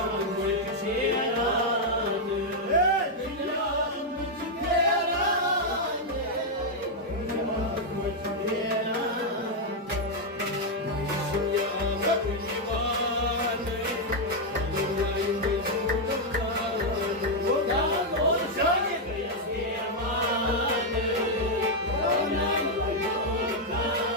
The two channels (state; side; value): normal; both; correlation -0.01